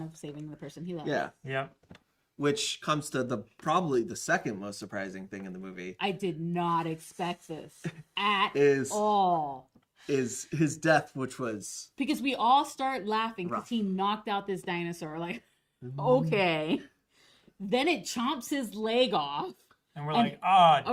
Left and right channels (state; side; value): identical; both; correlation 1.00